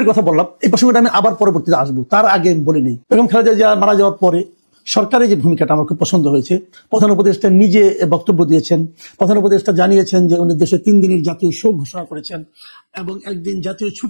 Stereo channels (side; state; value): both; inverted; correlation -1.00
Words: কথা বললাম, এই প্রসঙ্গটা আমি আবার পরবর্তীতে আসবো, তার আগে বলে নেই বেগম খালেদা জিয়া মারা যাওয়ার পরে সরকারের যে ভূমিকাটা আমার খুব পছন্দ হয়েছে। প্রধান উপদেষ্টা নিজে বক্তব্য দিয়েছেন। প্রধান উপদেষ্টা জানিয়েছেন যে উনি দেশে 3 দিনের জাতীয় শোক ঘোষণা করেছেন এবং 1 দিন জাতীয়